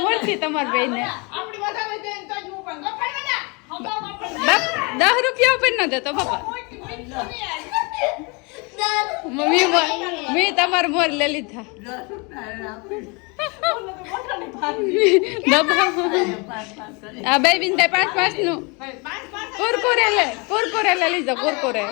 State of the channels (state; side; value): quieter; right; 30.0 dB